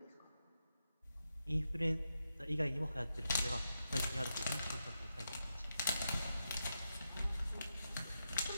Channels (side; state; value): both; inverted; correlation -0.88